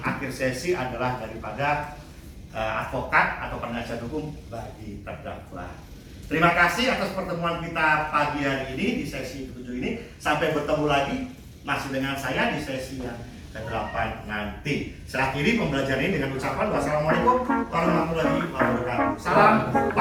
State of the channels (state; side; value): identical; both; correlation 1.00